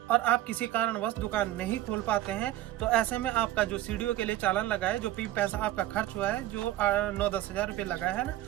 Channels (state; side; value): quieter; left; 14.3 dB